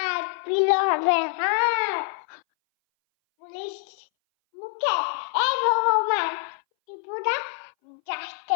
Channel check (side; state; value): right; silent; 59 dB below the other